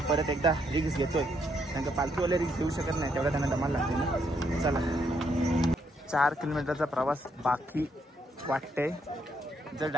परत एकदा रिक्स घेतोय. कारण का पालखीवाले रिक्स घेऊ शकत नाही. तेवढा त्यांना दमाल लागते ना. चला 4 किलोमीटरचा प्रवास बाकी वाटते. जर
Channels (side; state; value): both; normal; correlation 0.75